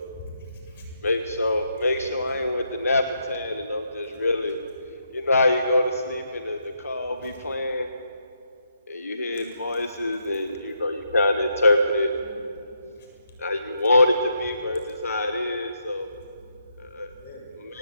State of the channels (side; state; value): both; inverted; correlation -0.78